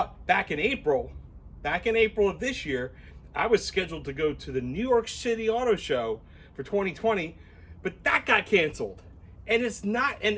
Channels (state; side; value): identical; both; correlation 1.00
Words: back in April of this year, I was scheduled to go to the New York City Auto Show for 2020, but that got canceled. And it's not, and